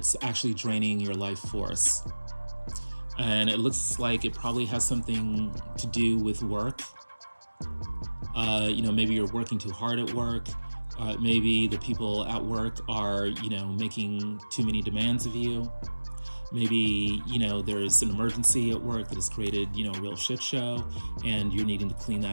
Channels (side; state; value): both; inverted; correlation -1.00